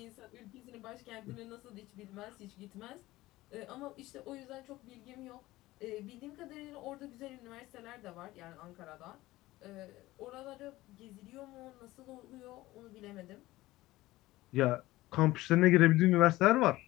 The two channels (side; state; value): right; quieter; 17.8 dB